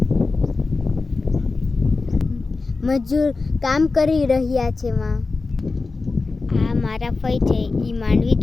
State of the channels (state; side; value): quieter; right; 3.9 dB